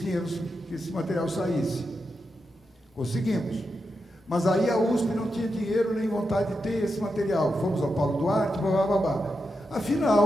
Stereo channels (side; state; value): both; normal; correlation 0.87